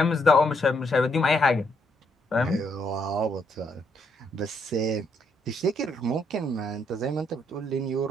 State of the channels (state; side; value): normal; both; correlation 0.73